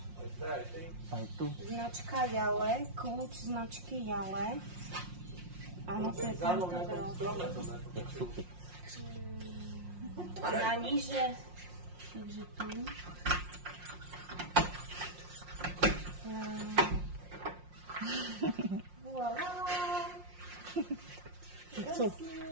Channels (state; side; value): late; left; 5.6 ms